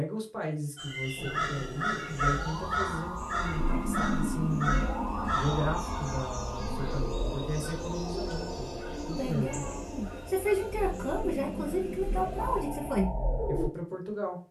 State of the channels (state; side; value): identical; both; correlation 1.00